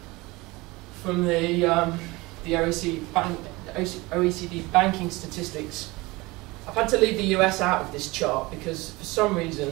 from the OECD banking statistics, I've had to leave the US out of this chart because for some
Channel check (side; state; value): left; quieter; 22.4 dB